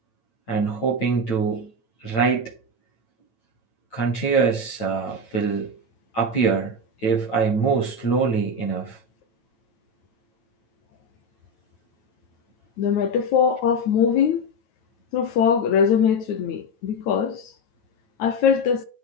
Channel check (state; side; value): late; right; 9.0 ms